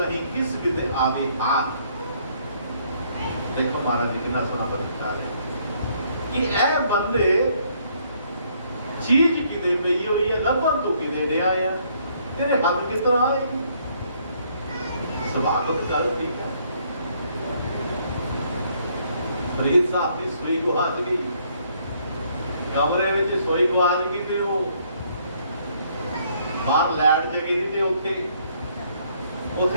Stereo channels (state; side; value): inverted; both; correlation -0.67